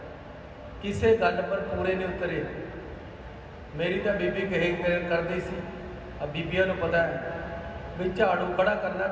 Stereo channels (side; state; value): both; identical; correlation 1.00